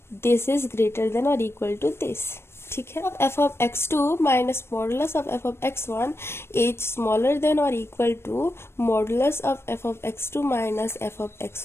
this is greater than और इक्वल टू दिस, ठीक है। f of x2 minus modulus of f of x1 is smaller than और equal to modulus of f of x2 minus f of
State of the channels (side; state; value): right; late; 0.12 ms